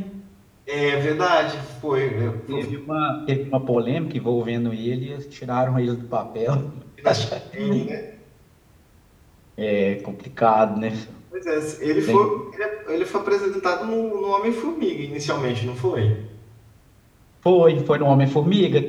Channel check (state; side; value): identical; both; correlation 1.00